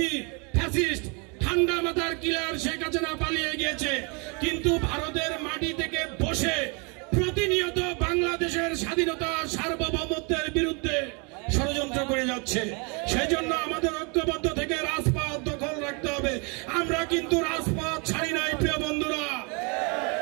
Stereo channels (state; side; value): quieter; left; 33.1 dB